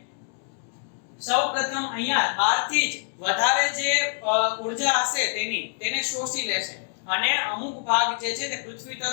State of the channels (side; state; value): right; silent; 60 dB below the other